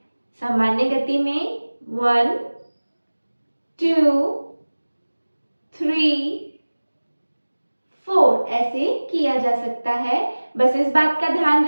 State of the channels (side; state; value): both; inverted; correlation -1.00